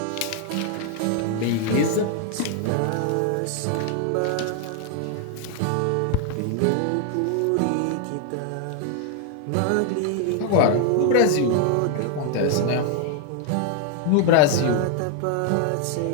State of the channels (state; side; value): different; both; correlation 0.00